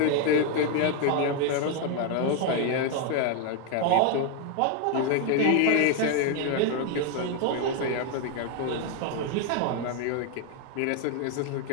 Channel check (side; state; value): both; different; correlation 0.01